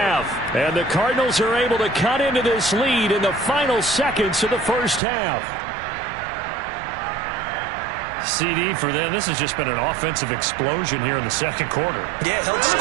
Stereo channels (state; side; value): drops out; left; at 5.0 s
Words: And the Cardinals are able to cut into this lead in the final seconds of the first half. CD for them. This has just been an offensive explosion here in the second quarter. Yeah, held